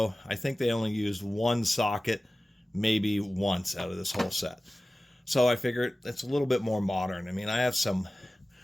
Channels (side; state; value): both; normal; correlation 0.97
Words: I think they only used one socket maybe once out of this whole set. So I figured it's a little bit more modern. I mean, I have some